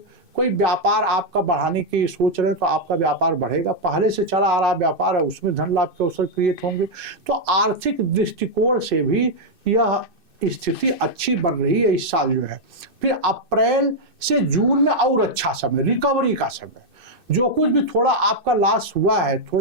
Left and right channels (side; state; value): left; late; 2.6 ms